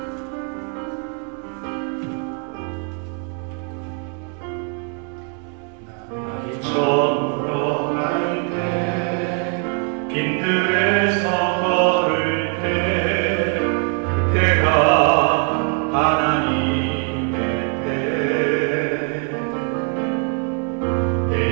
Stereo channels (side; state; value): left; quieter; 39.5 dB